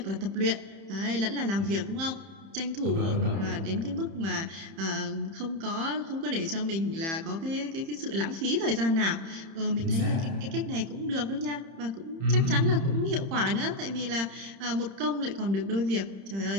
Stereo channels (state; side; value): late; left; 30 ms